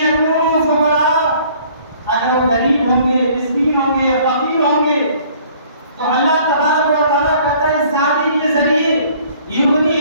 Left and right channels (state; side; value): inverted; both; correlation -0.56